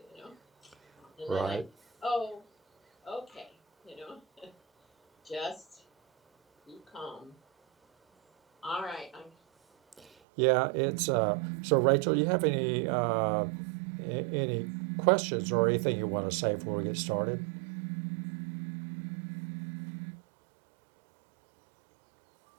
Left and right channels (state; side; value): drops out; left; at 10.1 s